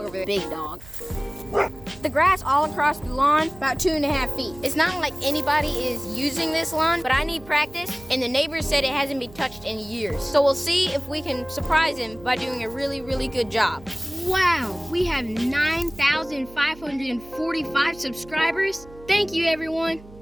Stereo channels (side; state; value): right; noise; hum, 20 dB below the sound